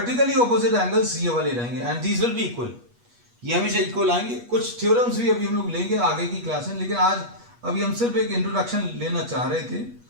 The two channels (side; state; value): left; late; 8.3 ms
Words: ऑपोजिट एंगल्स ये वाले रहेंगे and these will be equal. ये हमेशा इक्वल आएंगे। कुछ थ्योरम्स भी अभी हम लोग लेंगे आगे की क्लास में, लेकिन आज अभी हम सिर्फ एक इंट्रोडक्शन लेना चाह रहे थे